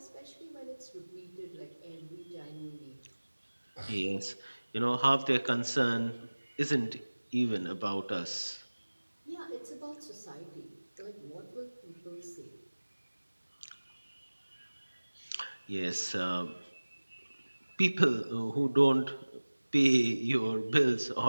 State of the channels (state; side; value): inverted; both; correlation -1.00